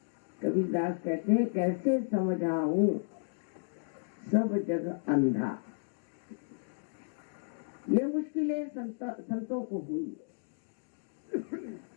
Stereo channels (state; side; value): silent; right; digital silence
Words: कबीरदास कहते हैं, कैसे समझाऊं सब जग अंधा। ये मुश्किलें संतों को हुई,